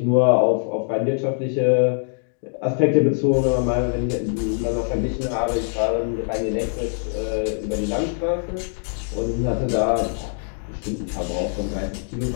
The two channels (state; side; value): silent; right; digital silence